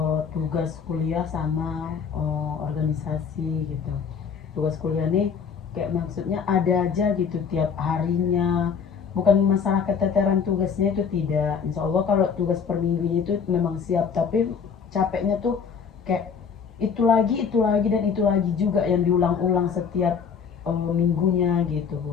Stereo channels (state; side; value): quieter; right; 6.4 dB